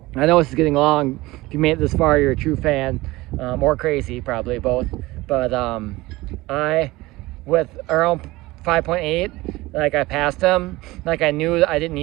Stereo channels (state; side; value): quieter; left; 19.9 dB